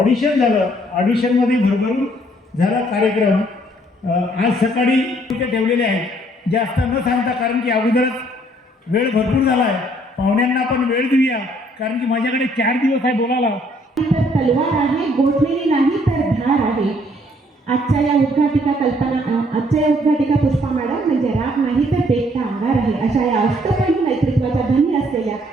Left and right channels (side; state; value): both; normal; correlation 0.65